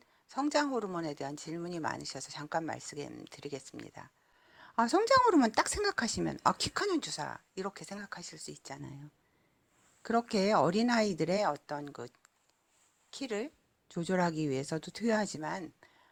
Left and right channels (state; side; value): identical; both; correlation 1.00